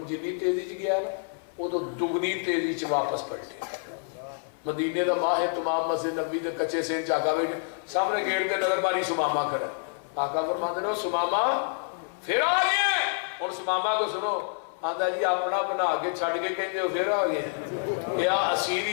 جنی تیزی چ گیا نا وہ تو دگنی تیزی چ واپس پلٹے مدینے دا ماہ ہے تمام مسجد نبی دے کچے سے چاکا بیٹھے سامنے گیٹ کے نظر ماری سماما کھڑا آقا فرماتے رہو سماما پھر آ گئے اور سماما کو سنو آدھا جی اپنا بنا کے چھڑ کے کہتے ہو پھر آ گئے کیا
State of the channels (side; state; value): right; silent; 57 dB below the other